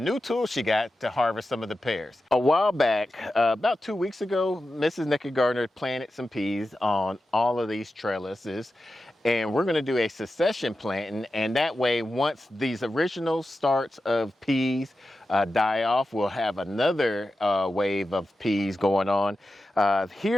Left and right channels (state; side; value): normal; both; correlation 0.92